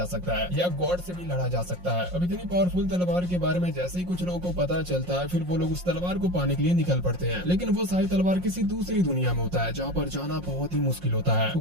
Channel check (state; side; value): late; left; 5.6 ms